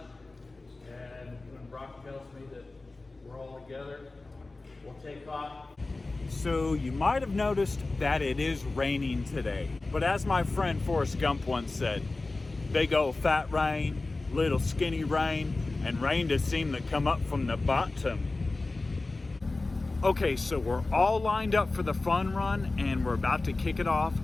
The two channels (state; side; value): quieter; right; 3.3 dB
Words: and when Brock tells me that we're all together, we'll take off. So you might have noticed that it is raining today, but as my friend Forrest Gump once said, big old fat rain, little skinny rain, and rain just seemed to come up from the bottom. Okay, so we're all lined up for the fun run and we're about to kick it off.